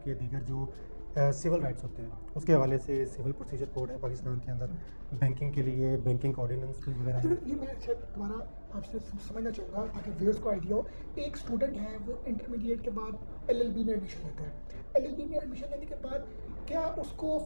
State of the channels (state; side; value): inverted; both; correlation -1.00